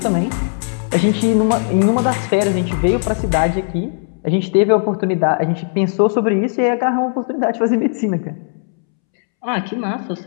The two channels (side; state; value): right; silent; 68 dB below the other